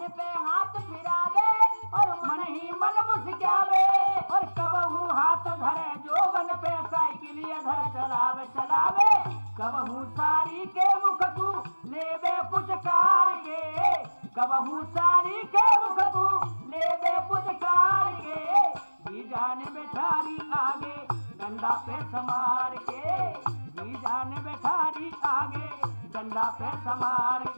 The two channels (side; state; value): both; inverted; correlation -1.00